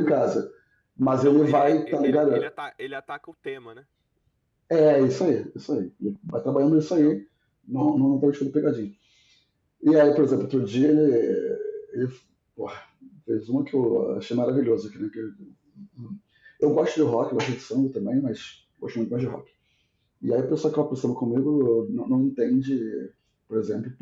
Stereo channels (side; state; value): both; identical; correlation 1.00